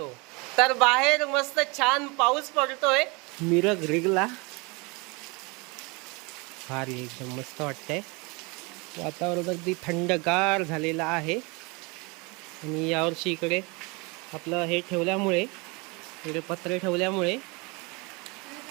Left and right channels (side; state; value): left; quieter; 28.2 dB